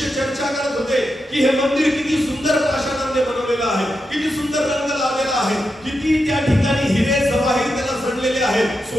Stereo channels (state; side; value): normal; both; correlation 0.87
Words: चर्चा करत होते की हे मंदिर किती सुंदर पाषाणाने बनवलेलं आहे, किती सुंदर रंग लावलेला आहे, किती त्या ठिकाणी हिरे जवाहीर त्याला जडलेले आहेत,